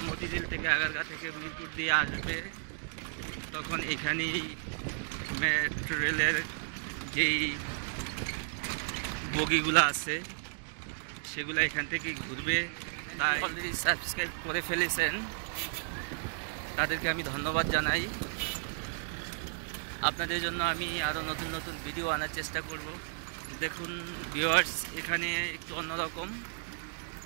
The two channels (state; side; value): silent; left; digital silence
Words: মতিঝিল থেকে আগারগাঁ থেকে মিরপুর দিয়ে আসবে, তখন এখানেই মেট্রো রেলের যেই বগিগুলো আছে সেগুলো এখান থেকে ঘুরবে। তাই অলরেডি সাবস্ক্রাইব করে ফেলেছেন, তাদেরকে আমি ধন্যবাদ জানাই। আপনাদের জন্য আমি আরও নতুন ভিডিও আনার চেষ্টা করব। দেখুন ভিউয়ার্স, এখানে একটু অন্যরকম।